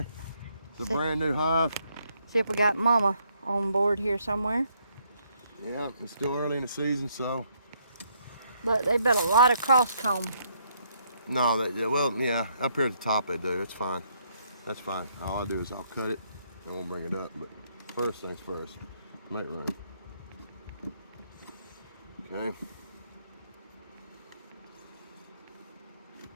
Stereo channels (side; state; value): both; inverted; correlation -0.71